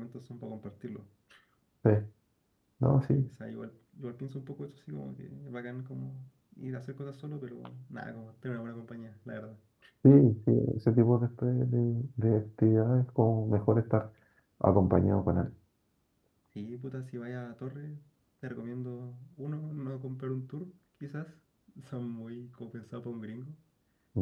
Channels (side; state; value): both; identical; correlation 1.00